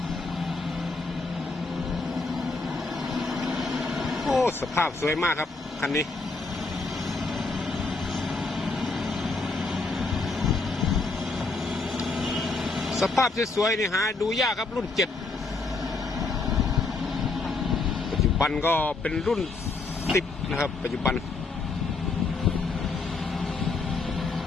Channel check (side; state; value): right; quieter; 3.7 dB